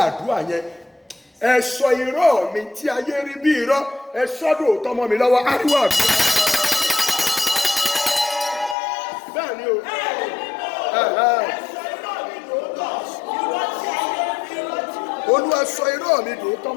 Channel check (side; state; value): right; drops out; at 8.8 s